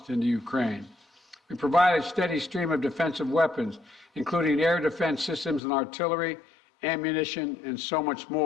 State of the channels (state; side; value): drops out; right; at 5.6 s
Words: into Ukraine. We provided a steady stream of defensive weapons, including air defense systems and artillery, ammunition, and so much